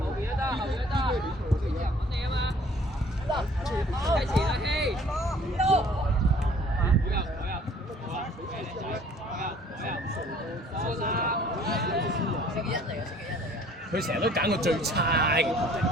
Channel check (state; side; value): normal; both; correlation 0.54